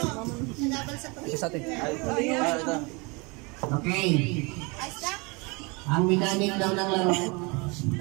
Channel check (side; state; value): left; quieter; 28.7 dB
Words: nagabal sa pagkakas. isa sa atin. Ito. Okay. Ayos na? Ang mechanic daw ng laro,